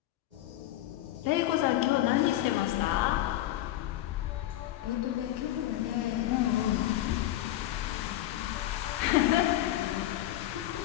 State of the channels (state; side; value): quieter; right; 14.3 dB